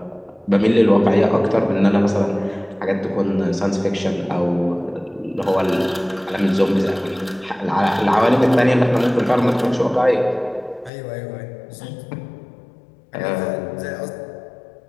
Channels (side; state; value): right; drops out; at 10.9 s